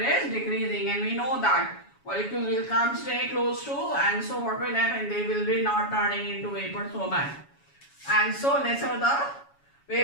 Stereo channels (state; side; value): late; right; 7.2 ms